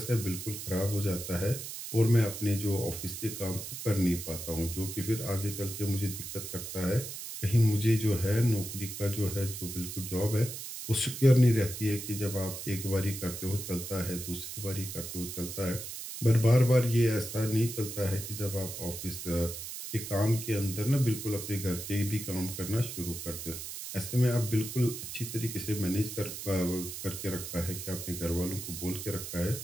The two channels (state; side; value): noise; right; hiss, 8 dB below the sound